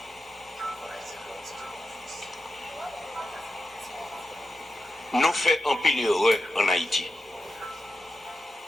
Nous faisons en pile heureux en Haïti.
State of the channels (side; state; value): both; normal; correlation 0.90